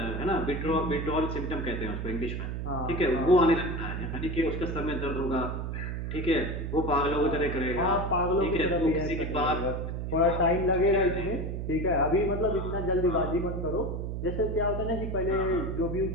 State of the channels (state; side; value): noise; right; hum, 4 dB below the sound